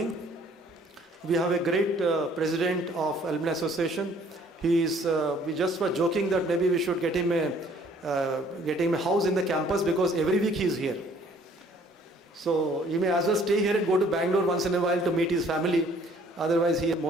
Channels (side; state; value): both; normal; correlation 0.58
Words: We have a great president of Alumni Association. We just were joking that maybe we should get him a house in the campus, because every week he is here. So you may as well stay here and go to Bangalore once in a while to meet his family. Otherwise, he is